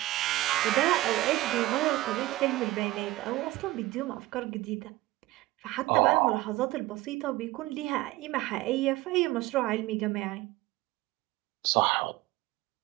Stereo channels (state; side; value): quieter; left; 17.9 dB